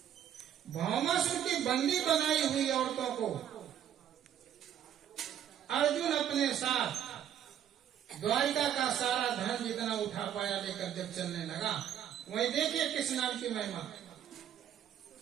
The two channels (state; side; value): quieter; left; 10.0 dB